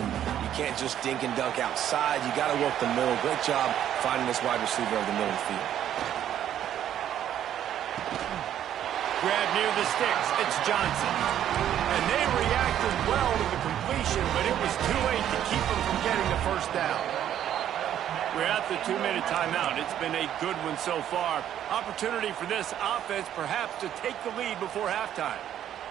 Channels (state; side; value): quieter; left; 10.7 dB